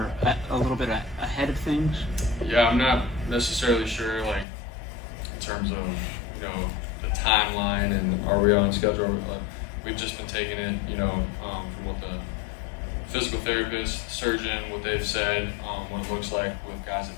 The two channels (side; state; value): right; drops out; at 4.5 s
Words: a little bit ahead of things? Yeah, I'm not necessarily sure, like, in terms of, the timeline and are we on schedule. We've just been taking it, from what the physical therapist, surgeon, what they've said, what it looks like with guys that